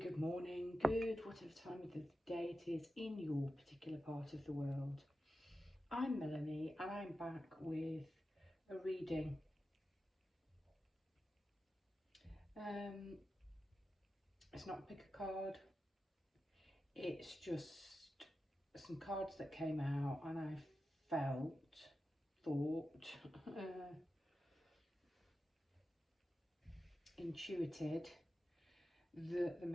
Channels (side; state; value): both; normal; correlation 0.92